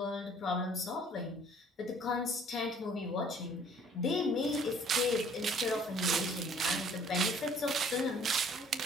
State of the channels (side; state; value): both; normal; correlation 0.56